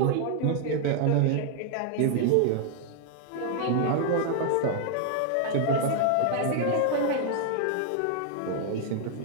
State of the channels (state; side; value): different; both; correlation 0.00